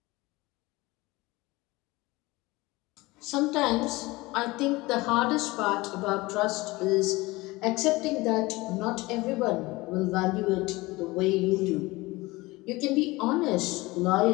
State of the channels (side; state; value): right; quieter; 21.4 dB